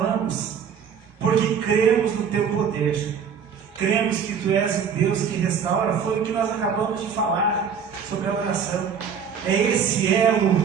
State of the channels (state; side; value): quieter; left; 7.0 dB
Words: porque cremos no Teu poder. Cremos que Tu és o Deus que restaura. Foi o que nós acabamos de falar sobre a oração. É esse